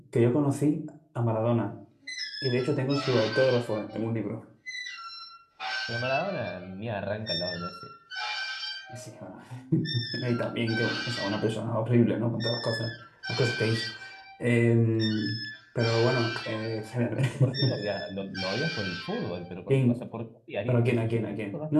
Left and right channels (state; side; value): identical; both; correlation 1.00